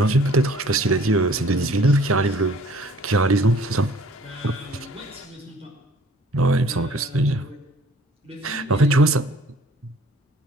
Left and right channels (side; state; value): both; normal; correlation 0.54